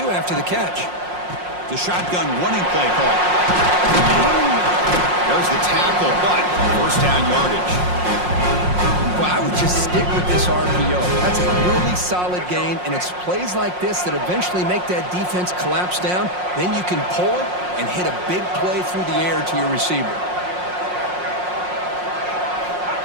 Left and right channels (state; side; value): late; left; 5.6 ms